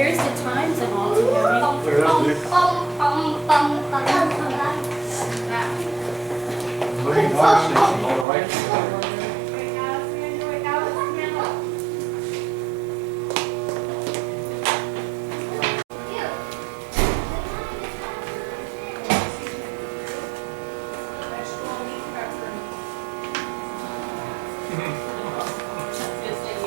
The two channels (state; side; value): drops out; left; at 8.2 s